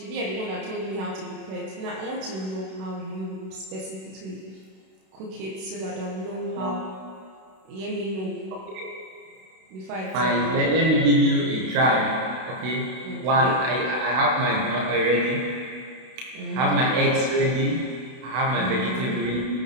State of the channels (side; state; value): left; late; 32 ms